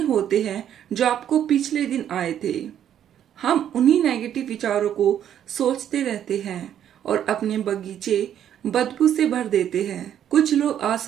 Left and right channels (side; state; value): left; quieter; 10.1 dB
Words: होते हैं जो आपको पिछले दिन आए थे। हम उन्हीं नेगेटिव विचारों को सोचते रहते हैं और अपने बगीचे बदबू से भर देते हैं। कुछ लोग